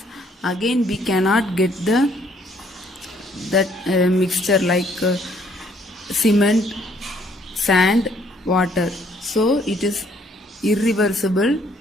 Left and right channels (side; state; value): both; normal; correlation 0.65